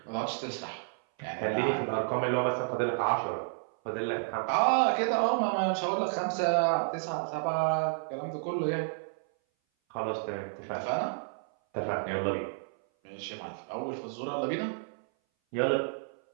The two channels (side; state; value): left; silent; 57 dB below the other